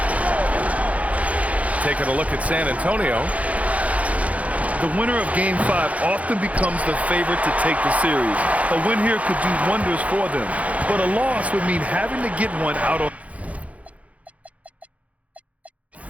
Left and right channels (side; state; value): left; late; 0.067 ms